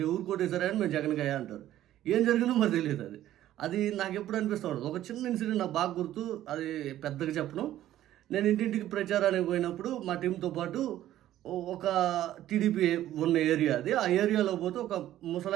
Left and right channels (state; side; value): quieter; left; 13.1 dB